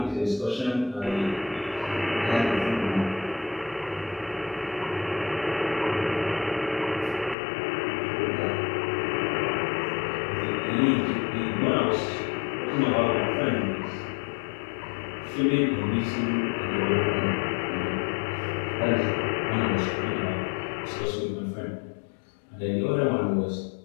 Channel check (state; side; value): drops out; right; at 7.4 s